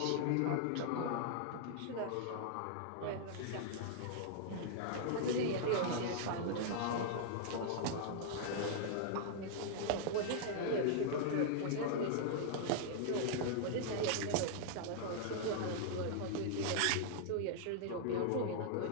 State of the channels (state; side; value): different; both; correlation -0.01